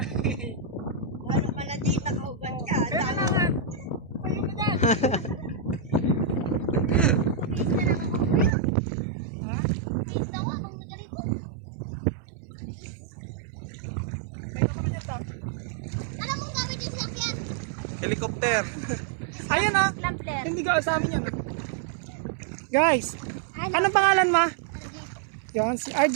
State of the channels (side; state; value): left; drops out; at 8.5 s